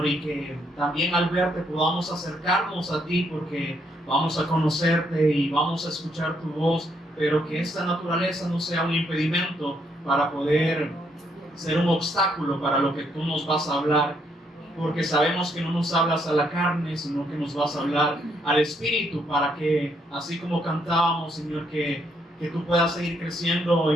y que también al verte podamos acercarnos a ti, porque vamos a conocerte y vamos a escuchar tu voz, pero que esta naturaleza no sea un impedimento para poder ser un obstáculo para lo que tú nos vas a hablar, porque sabemos que no nos hablas a la carne, sino que nos vas a hablar al Espíritu, para que, así como cantábamos, Señor, que tú puedas seguir creciendo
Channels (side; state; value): both; normal; correlation 0.73